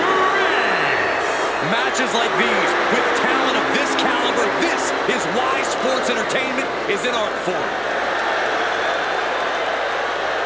Matches like these, with talent of this caliber, this is why sports entertainment is an art form.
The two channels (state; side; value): noise; left; hum, 29 dB below the sound